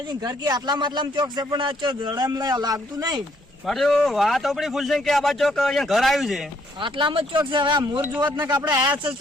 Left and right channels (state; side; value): normal; both; correlation 0.68